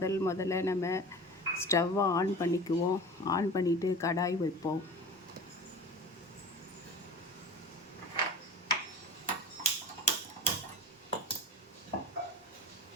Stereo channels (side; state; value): both; normal; correlation 0.35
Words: நம்ம ஸ்டவ்வை ஆன் பண்ணிக்குவோம். ஆன் பண்ணிவிட்டு கடாய் வைப்போம்.